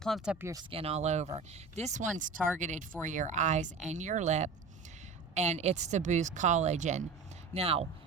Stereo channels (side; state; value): left; quieter; 4.7 dB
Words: up your skin all over. This one's targeted for your eyes and your lip, and it's to boost collagen. Now,